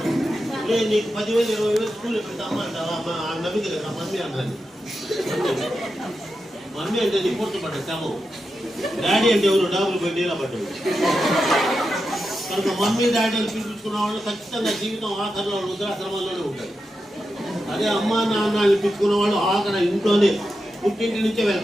నీకు 10,000 20,000 స్కూల్లో పెడతా అమ్మ అంటావా? నవ్వింది కదా మమ్మీ అన్నది. మమ్మీ అంటే నీ పూర్తిపడ్డా శమం, డాడీ అంటే ఎవరు డాబులు పోయి నీళ్ళ పడ్డాడు. కనుక మమ్మీ డాడీలు పిలిపించుకున్న వాళ్ళు ఖచ్చితంగా జీవితం ఆఖరిలో వృద్ధాశ్రమాల్లోనే ఉంటారు. అదే అమ్మ నాన్న పిలుచుకున్న వాళ్ళు ఆఖరి ఇంట్లోనే, పుట్టింటి నుంచే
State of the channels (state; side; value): normal; both; correlation 0.89